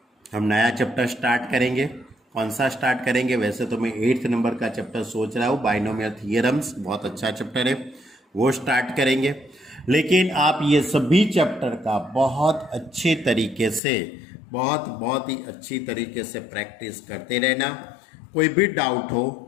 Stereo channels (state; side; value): drops out; right; at 13.8 s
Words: हम नया चैप्टर स्टार्ट करेंगे। कौन सा स्टार्ट करेंगे? वैसे तो मैं 8th नंबर का चैप्टर सोच रहा हूँ, बाइनोमियल थियरम्स, बहुत अच्छा चैप्टर है, वो स्टार्ट करेंगे। लेकिन आप ये सभी चैप्टर का बहुत अच्छे तरीके से, बहुत ही अच्छी तरीके से प्रैक्टिस करते रहना। कोई भी डाउट हो